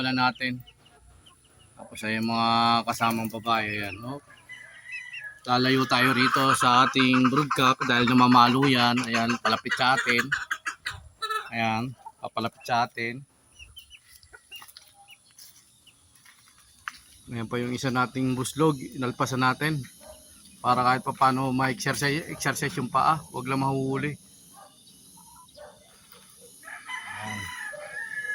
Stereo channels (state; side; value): identical; both; correlation 1.00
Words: natin. Tapos ay mga kasamang babae. Ayan, no? Lalayo tayo rito sa ating broodcock dahil namamalo yan. Ayan, palapit sa atin. Ayan, papalapit sa atin. Ayan pa yung isa nating buslog, inalpasan natin. Para kahit pa paano ma-exercise yung paa, huwag lang mahuhuli. Ayan.